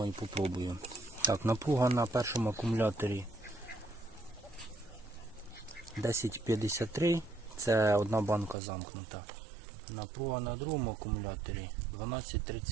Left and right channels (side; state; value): left; drops out; at 8.6 s